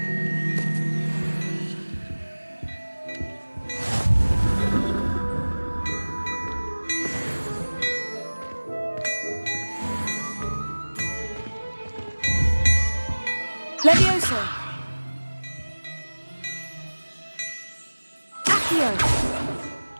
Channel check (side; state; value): both; inverted; correlation -1.00